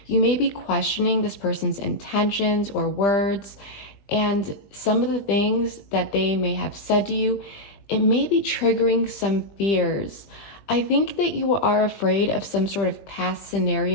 You may be questioning this person's intentions or words, and some of the things that they may have said to you, it may be triggering some fears. I think that you are afraid of some sort of past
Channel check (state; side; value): late; right; 20 ms